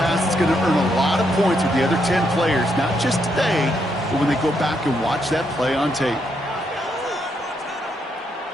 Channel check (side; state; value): both; normal; correlation 0.77